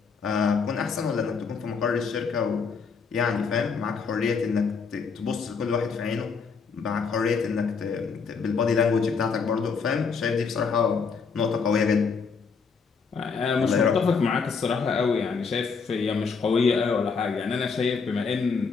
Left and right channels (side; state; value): right; quieter; 5.4 dB